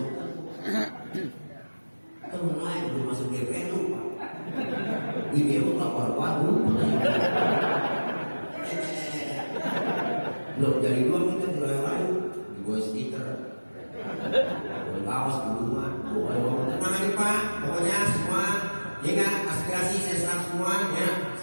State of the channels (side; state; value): both; inverted; correlation -1.00